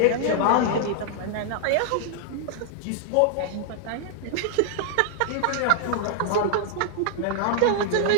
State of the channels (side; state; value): both; different; correlation 0.00